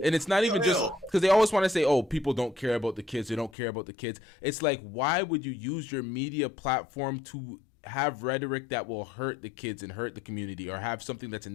And it's not even just because they always want to say, oh, people don't care about the kids. They don't care about the kids. It's like, why would you use your media platform to have rhetoric that will hurt the kids and hurt the community, or have something that's a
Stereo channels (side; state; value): right; drops out; at 3.5 s